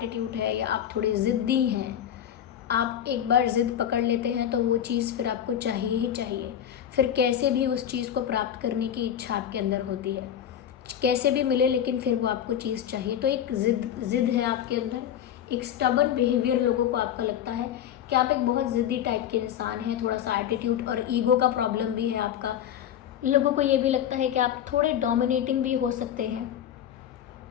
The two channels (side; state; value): right; quieter; 10.1 dB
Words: है या आप थोड़े ज़िद्दी हैं, आप एक बार ज़िद पकड़ लेते हैं तो वो चीज़ फिर आपको चाहिए ही चाहिए, फिर कैसे भी उस चीज़ को प्राप्त करने की इच्छा आपके अंदर होती है, कैसे भी मिले लेकिन फिर वो आपको चीज़ चाहिए। तो एक ज़िद है आपके अंदर, एक स्टबर्न बिहेवियर लोगों को आपका लगता है कि आप एक बहुत ज़िद्दी टाइप के इंसान हैं। थोड़ा सा एटीट्यूड और ईगो का प्रॉब्लम भी है आपका। लोगों को ये भी लगता है कि आप थोड़े डोमिनेटिंग भी हो सकते हैं।